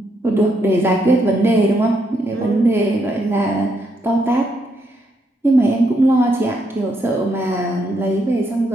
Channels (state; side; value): normal; both; correlation 0.77